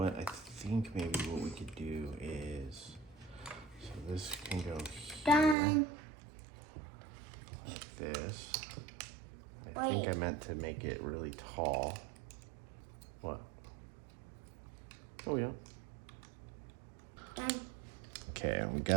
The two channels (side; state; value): left; drops out; at 5.6 s